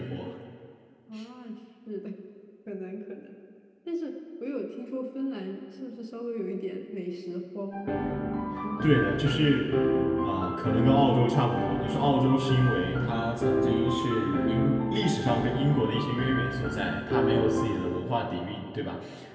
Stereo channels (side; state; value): both; identical; correlation 1.00